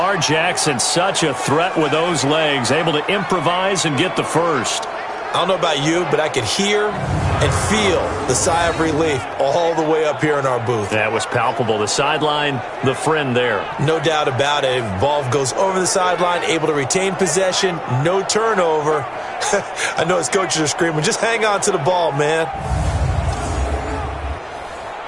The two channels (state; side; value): identical; both; correlation 1.00